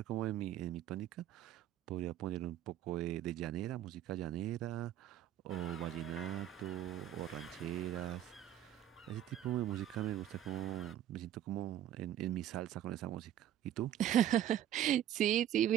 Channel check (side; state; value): left; quieter; 11.6 dB